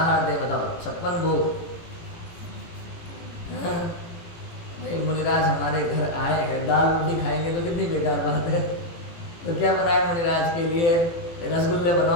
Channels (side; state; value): right; late; 18 ms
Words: दे बताओ? 56 भोग। भाई मुनिराज हमारे घर आए हैं, दाल रोटी खाएंगे तो कितनी बेकार बात है। तो क्या बनाए मुनिराज के लिए? रसगुल्ले